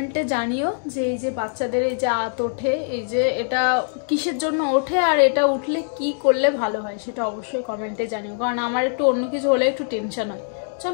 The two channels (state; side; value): silent; right; digital silence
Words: জানিও যে এই যে বাচ্চাদের এই যে আঁত ওঠে, এই যে এটা কিসের জন্য ওঠে, আর এটা উঠলে কি করলে ভালো হয়, সেটা অবশ্যই কমেন্টে জানিও, কারণ আমার একটু অন্য কিছু হলে একটু টেনশন হয়।